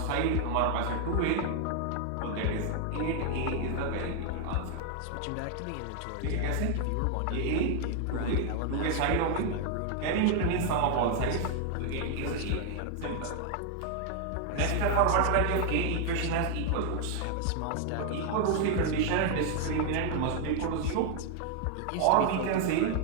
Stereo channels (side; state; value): both; different; correlation 0.00